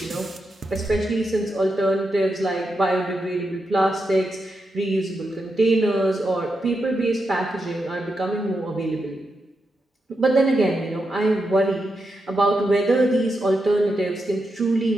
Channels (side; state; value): both; normal; correlation 0.86